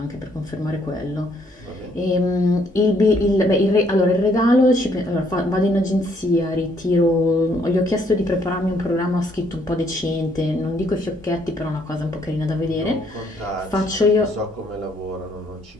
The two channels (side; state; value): both; normal; correlation 0.68